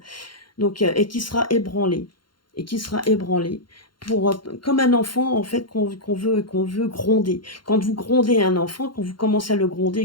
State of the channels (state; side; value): late; right; 0.72 ms